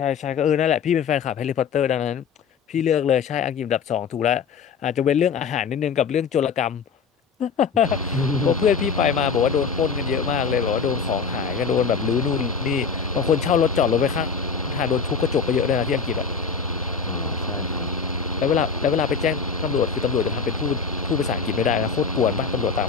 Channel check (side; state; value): right; quieter; 5.8 dB